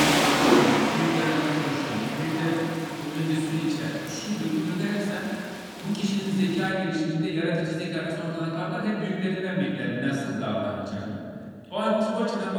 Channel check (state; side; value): identical; both; correlation 1.00